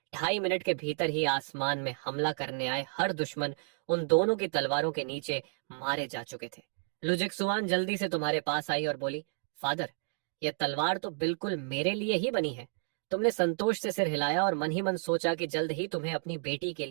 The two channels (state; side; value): silent; left; 57 dB below the other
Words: 2.5 मिनट के भीतर ही आसमान में हमला करने आए हर दुश्मन उन दोनों की तलवारों के नीचे मारे जा चुके थे। लू जिक्सुआन जल्दी से तुम्हारे पास आई और बोली, फादर, यह तलवार तो बिल्कुल मेरे लिए ही बनी है। तुमने संतोष से सिर हिलाया और मन ही मन सोचा कि जल्द ही तुम्हें अपनी बेटी के